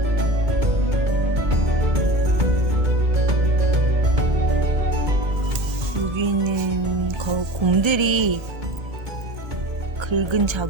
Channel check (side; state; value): left; late; 2.2 ms